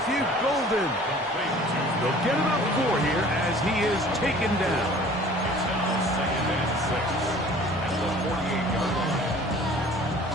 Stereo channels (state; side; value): normal; both; correlation 0.49